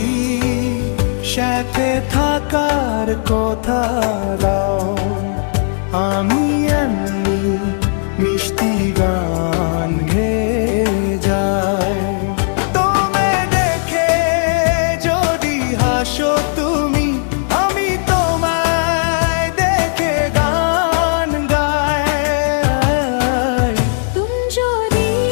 সাথে থাকার কথা দাও, আমি এমনি মিষ্টি গান গেয়ে যাই। তুমি দেখে যদি হাসো তুমি, আমি তোমায় দেখে গান গাই। তুমি যদি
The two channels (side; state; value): right; silent; digital silence